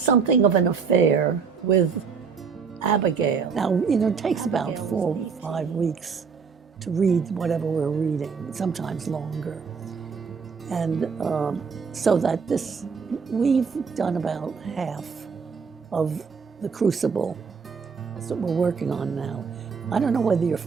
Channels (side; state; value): left; quieter; 5.8 dB